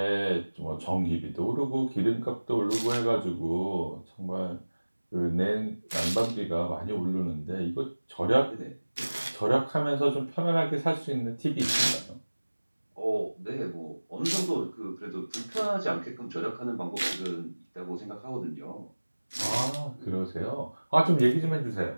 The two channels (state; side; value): inverted; both; correlation -1.00